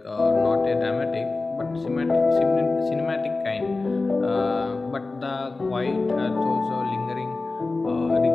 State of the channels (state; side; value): quieter; right; 3.5 dB